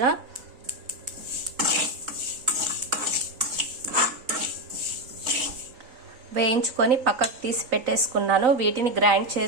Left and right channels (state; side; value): late; left; 3.9 ms